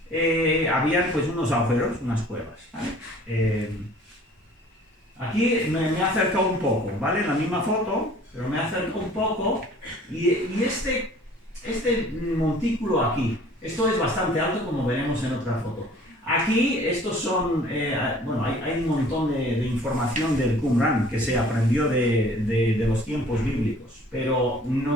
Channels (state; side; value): normal; both; correlation 0.51